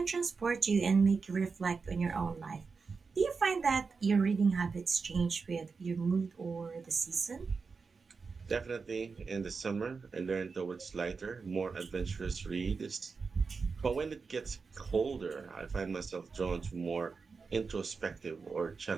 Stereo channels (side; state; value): left; quieter; 4.8 dB